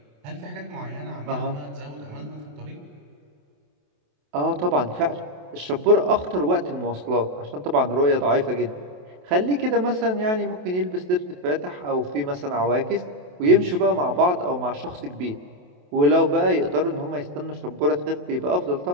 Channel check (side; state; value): left; late; 28 ms